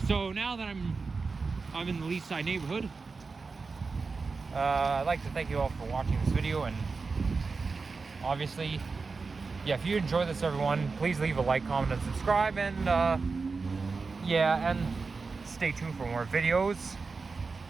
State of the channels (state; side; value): quieter; left; 4.4 dB